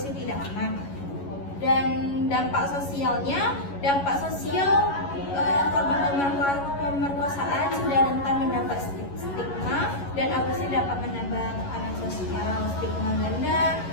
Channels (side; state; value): right; late; 11 ms